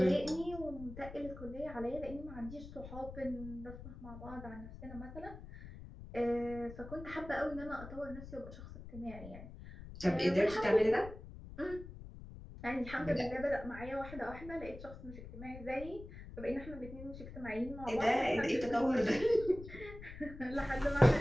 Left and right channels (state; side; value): noise; left; rumble, 13 dB below the sound